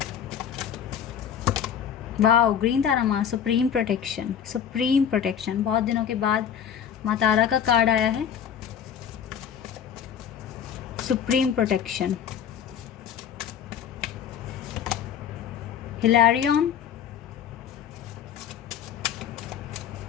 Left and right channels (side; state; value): right; quieter; 8.6 dB